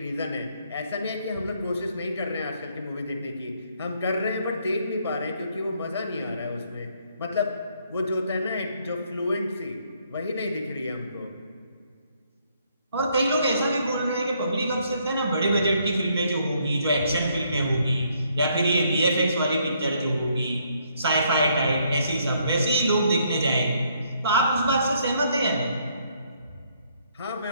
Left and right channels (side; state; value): both; inverted; correlation -0.69